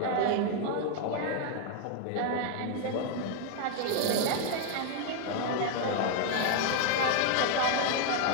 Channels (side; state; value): both; different; correlation 0.00